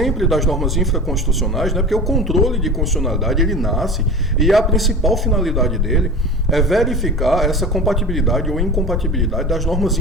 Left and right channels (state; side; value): normal; both; correlation 0.33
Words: das normas infraconstitucionais, né, porque o controle de constitucionalidade ele nasce e a principal finalidade dele é verificar essa compatibilidade ou incompatibilidade das normas